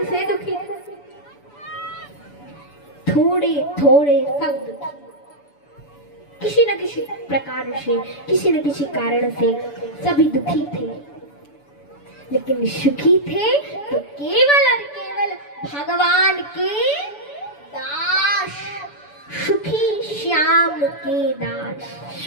से दुखी था। थोड़े थोड़े सब दुखी, किसी न किसी प्रकार से, किसी न किसी कारण से सभी दुखी थे, लेकिन सुखी थे तो केवल और केवल भगवान के दास, सुखी श्याम के दास,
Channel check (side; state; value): right; late; 7.0 ms